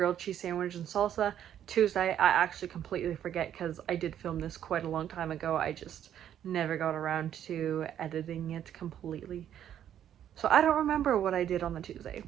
cheese sandwich and salsa. Tuesday I actually completely forget because I did film this quite a long time ago. I just never got around to editing it completely. So I don't remember what I did on the Tuesday,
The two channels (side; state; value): left; quieter; 10.3 dB